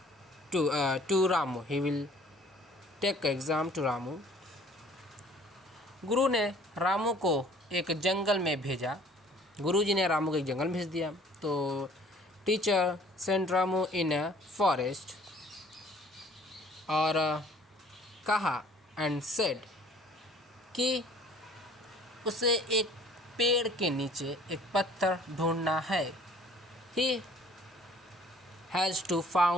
to Ramu। गुरु ने रामू को एक जंगल में भेजा। गुरुजी ने रामू को एक जंगल में भेज दिया। तो teacher sent Ramu in a forest और कहा एंड सेड कि उसे एक पेड़ के नीचे एक पत्थर ढूंढना है। He has to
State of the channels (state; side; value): normal; both; correlation 0.54